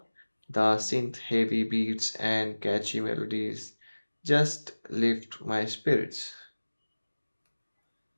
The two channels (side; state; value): both; inverted; correlation -1.00